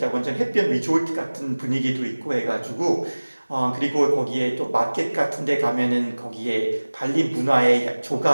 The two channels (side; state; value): both; inverted; correlation -1.00